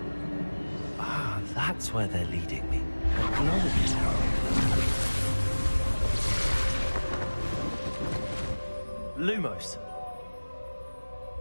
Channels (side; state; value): both; inverted; correlation -1.00